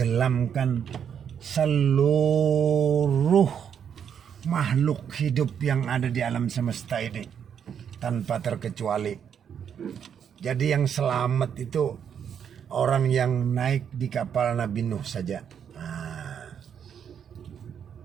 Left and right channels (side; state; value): left; quieter; 8.1 dB